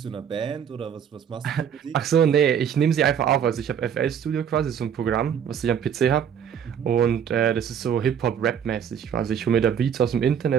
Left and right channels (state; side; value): quieter; left; 8.3 dB